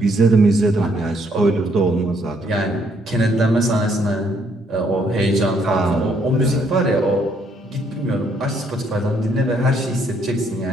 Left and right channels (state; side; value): normal; both; correlation 0.69